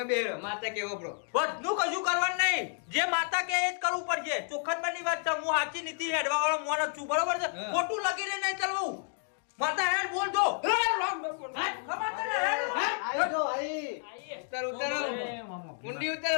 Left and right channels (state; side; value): silent; right; 57 dB below the other